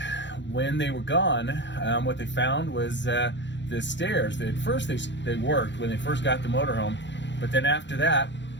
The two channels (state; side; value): late; right; 0.52 ms